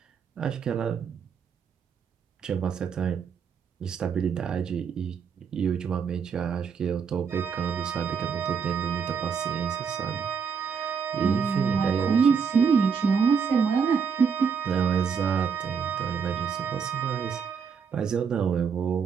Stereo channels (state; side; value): quieter; left; 6.4 dB